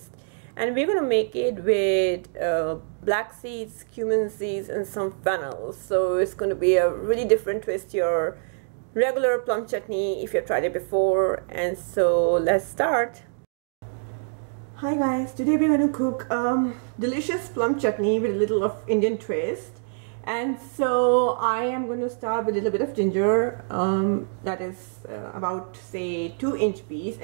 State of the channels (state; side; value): silent; left; digital silence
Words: And we're going to make it with black seeds, cumin seeds and some fennel. So it's going to be a really different twist to your regular plum chutney if you've tried it before. And so let's start. Hi guys, today we're going to cook delicious plum chutney with a little of Indian twist. And so I am going to start with a little bit of ginger, that is about say 2-inch piece,